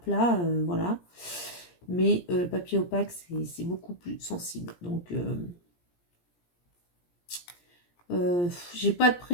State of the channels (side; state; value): right; late; 17 ms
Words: voilà. Mais le papier opaque, c'est beaucoup plus sensible. Donc, j'ai pas de